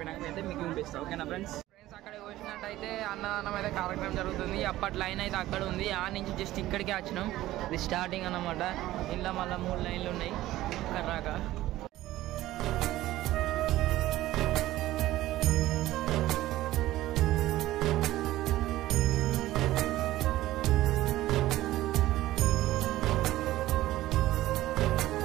అయితే మీకు చూపిస్తాం, ఓకేనా ఫ్రెండ్స్? అక్కడ చూసినట్టయితే అన్నదానం అయితే కార్యక్రమం జరుగుతుంది. అప్పటి లైన్ అయితే అక్కడ ఉంది, ఆ నుంచి జస్ట్ ఇక్కడికే వచ్చినాం. ఇది స్టార్టింగ్ అన్నమాట. ఇంట్లో మళ్ళీ 3 లైన్లు ఉన్నాయి కర్రాక.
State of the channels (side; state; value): left; quieter; 15.6 dB